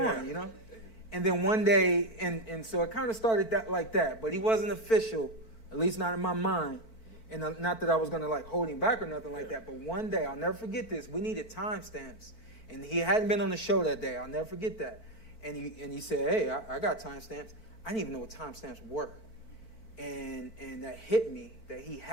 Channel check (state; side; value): late; right; 4.0 ms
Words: you know. And then one day, and so it kind of started like that, but he wasn't official, at least not in my mind. And not that I was going to like hold him back or nothing like that, but one day, I'll never forget this, we needed timestamps. And he hadn't been on the show that day. I'll never forget that. And he said, hey, I got timestamps. I didn't even know what timestamps were. And that hit me that he